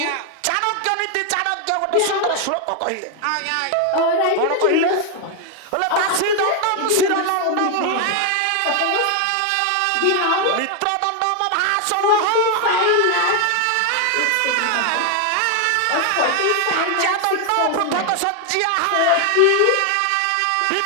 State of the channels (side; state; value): both; different; correlation 0.01